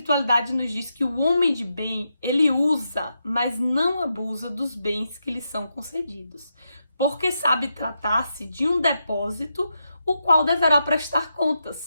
nos diz que o homem de bem, ele usa, mas não abusa dos bens que lhe são concedidos, porque sabe tratar-se de um depósito, o qual deverá prestar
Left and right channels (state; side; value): inverted; both; correlation -0.85